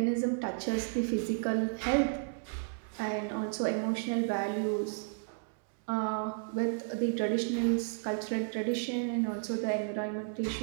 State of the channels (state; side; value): silent; left; digital silence